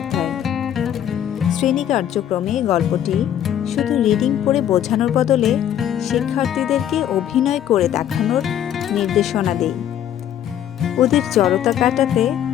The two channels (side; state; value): right; quieter; 10.5 dB